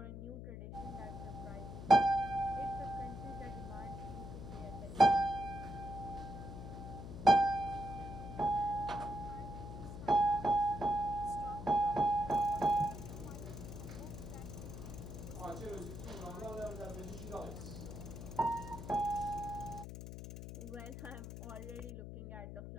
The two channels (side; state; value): left; noise; hum, 9 dB below the sound